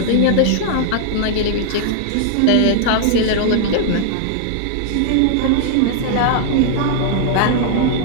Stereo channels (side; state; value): both; different; correlation 0.00